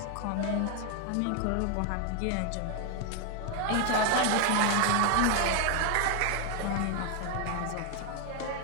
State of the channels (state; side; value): different; both; correlation 0.01